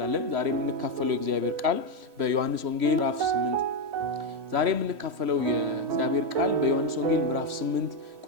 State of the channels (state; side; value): late; left; 3.1 ms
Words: ዛሬም እንካፈለው የእግዚአብሔር ቃል በዮሐንስ ወንጌል ምዕራፍ 8 ዛሬ የምንካፈለው የእግዚአብሔር ቃል በዮሐንስ ወንጌል ምዕራፍ 8